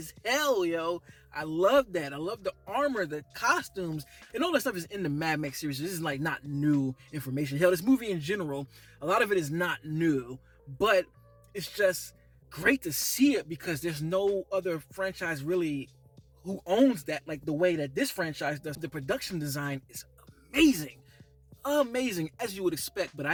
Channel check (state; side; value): identical; both; correlation 1.00